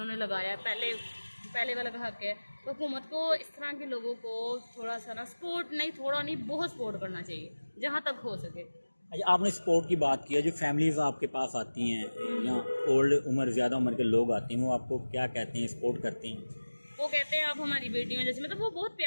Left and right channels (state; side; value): inverted; both; correlation -1.00